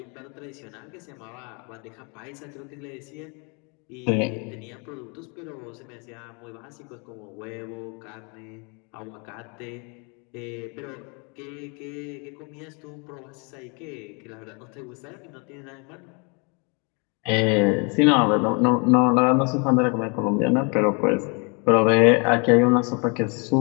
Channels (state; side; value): quieter; right; 33.8 dB